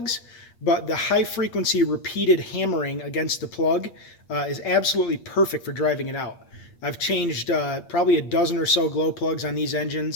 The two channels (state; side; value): late; right; 8.5 ms